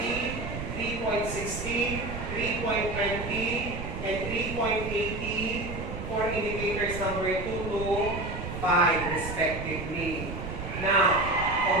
3.60, 3.20, and 3.80 for indicators number 2 to 5 respectively. Now,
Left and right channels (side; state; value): right; noise; rumble, 7 dB below the sound